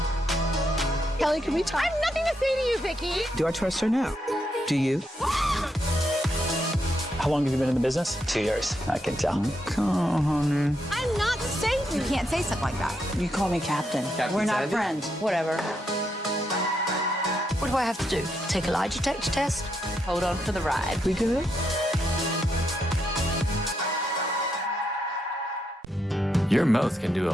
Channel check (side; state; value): both; normal; correlation 0.80